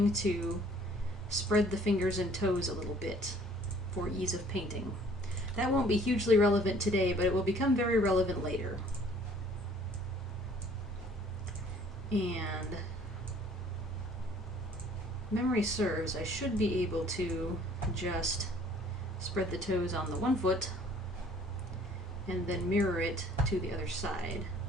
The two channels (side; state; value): both; normal; correlation 0.56